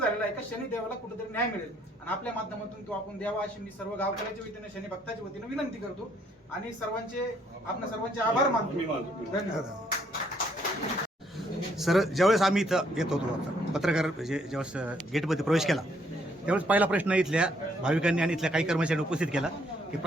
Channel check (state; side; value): normal; both; correlation 0.68